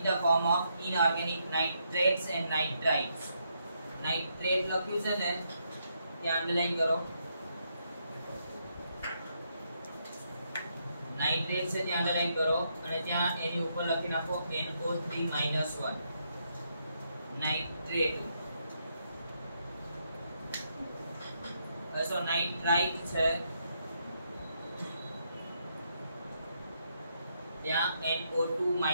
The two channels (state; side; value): inverted; both; correlation -0.78